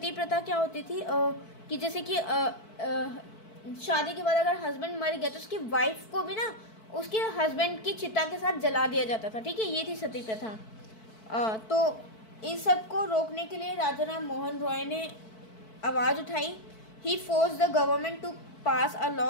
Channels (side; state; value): right; late; 4.6 ms